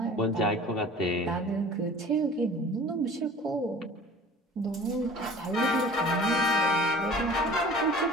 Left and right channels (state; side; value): normal; both; correlation 0.44